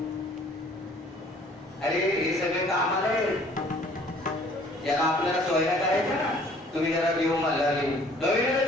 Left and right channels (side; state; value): both; normal; correlation 0.56